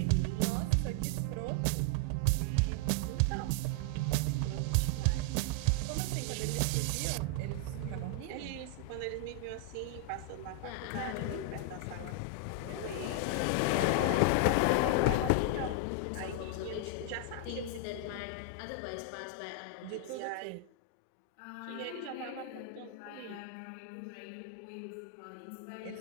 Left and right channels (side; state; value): both; different; correlation 0.00